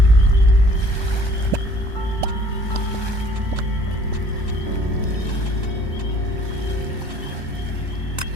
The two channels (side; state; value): left; late; 1.2 ms